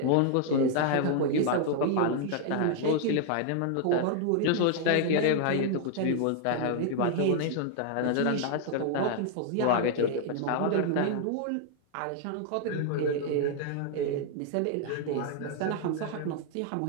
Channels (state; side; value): different; both; correlation 0.00